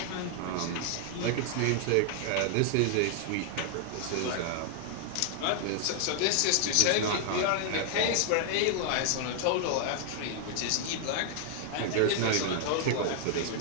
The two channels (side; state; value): both; different; correlation 0.00